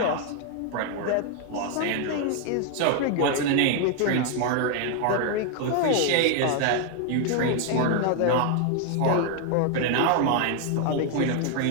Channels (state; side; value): different; both; correlation 0.00